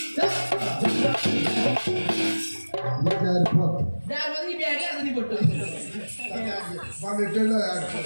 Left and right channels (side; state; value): both; inverted; correlation -1.00